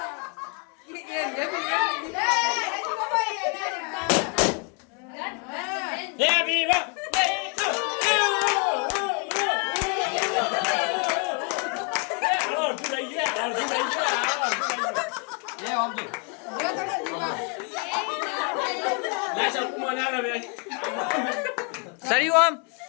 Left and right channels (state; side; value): quieter; right; 37.2 dB